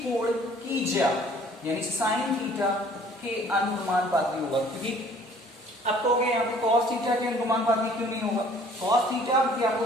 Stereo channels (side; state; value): both; normal; correlation 0.55